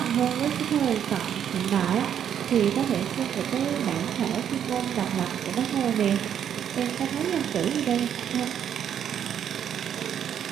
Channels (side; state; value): left; quieter; 9.1 dB